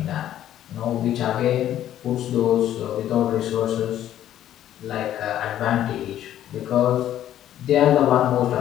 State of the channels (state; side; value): quieter; right; 11.8 dB